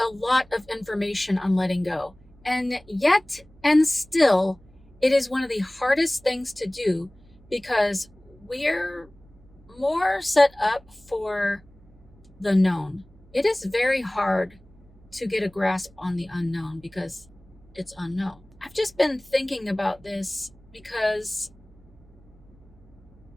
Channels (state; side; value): noise; right; hum, 26 dB below the sound